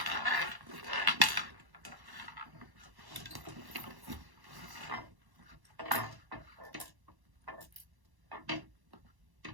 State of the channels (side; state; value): left; late; 1.1 ms